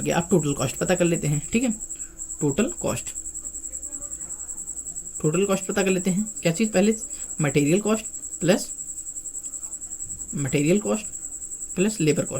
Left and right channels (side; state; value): both; identical; correlation 1.00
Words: गया, अब टोटल कॉस्ट पता कर लेते हैं, ठीक है। टोटल कॉस्ट पता कर लेते हैं। क्या चीज़, पहले material cost plus labour